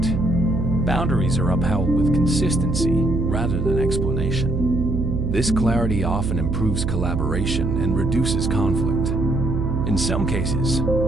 Boundaries are upheld with consistency rather than explanation. This clarity often improves collaboration and reduces conflict. In some cases,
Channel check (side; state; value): right; noise; hum, 1 dB below the sound